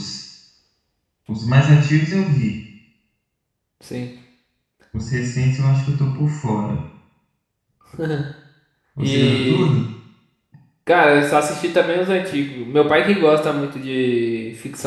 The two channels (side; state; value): both; identical; correlation 1.00